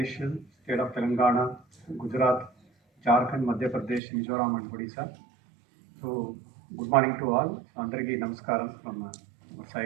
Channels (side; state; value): left; drops out; at 4.0 s